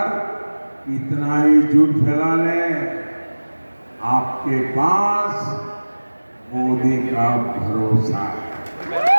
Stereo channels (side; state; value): both; inverted; correlation -1.00